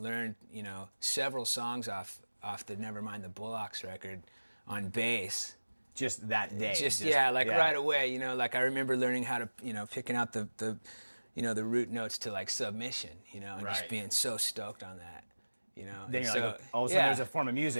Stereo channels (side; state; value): both; inverted; correlation -1.00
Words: several songs off the Nevermind the Bullocks record on bass. Just that day. Right away, I remember learning how to, picking out the root notes to Submission, and just being so stoked on that, Then you're all of a sudden there's a form of